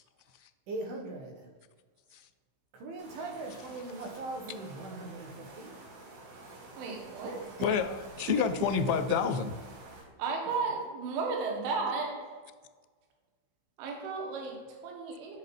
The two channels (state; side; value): late; left; 15 ms